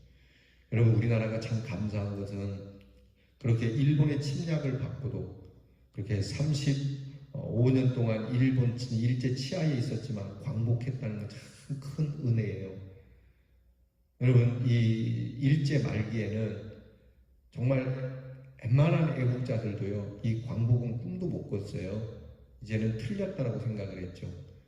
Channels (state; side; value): identical; both; correlation 1.00